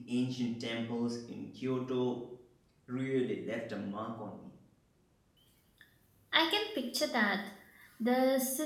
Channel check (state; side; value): identical; both; correlation 1.00